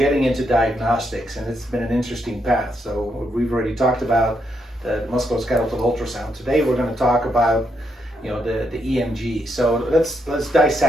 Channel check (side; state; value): both; normal; correlation 0.79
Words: into diagnostics, and it's been an interesting path. So we've already talked about the musculoskeletal ultrasound. Today we're going to talk about the EMG. So let's